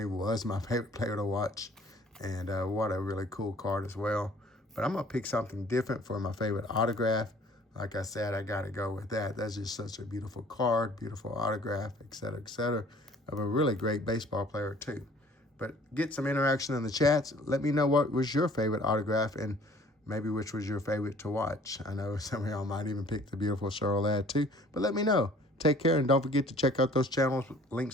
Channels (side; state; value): both; normal; correlation 0.54